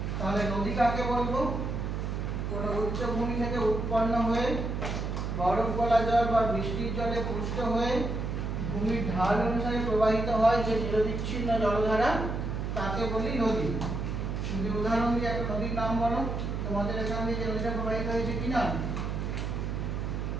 তাহলে নদী কাকে বলবো? কোনো উচ্চভূমি থেকে উৎপন্ন হয়ে বরফ গলা জল বা বৃষ্টির জলে পুষ্ট হয়ে ভূমির ঢাল অনুসারে প্রবাহিত হয় যে নিরবিচ্ছিন্ন জলধারা, তাকে বলি নদী। যদি উদাহরণ দিয়ে একটা নদীর নাম বলো, তোমাদের এখান দিয়ে যে নদীটা প্রবাহিত হয়েছে কি নাম?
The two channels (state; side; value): noise; right; hum, 2 dB below the sound